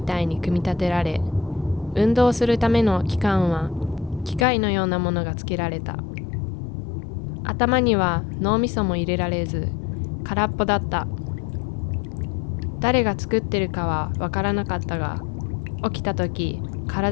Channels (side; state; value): right; drops out; at 4.5 s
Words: たいに組み立てられ、運動するための器官は機械のようなものがつけられた。頭には脳みそも入れられず、空っぽだった。誰が作ってるかはわからなかったが、起きた時、